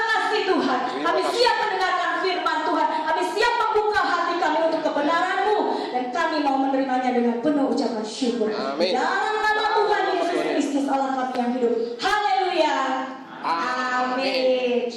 kasih Tuhan. Kami siap mendengarkan firman Tuhan. Kami siap membuka hati kami untuk kebenaran-Mu. Dan kami mau menerimanya dengan penuh ucapan syukur. Dalam nama Tuhan Yesus Kristus Allah kami yang hidup. Haleluya. Amin.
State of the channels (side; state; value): both; identical; correlation 1.00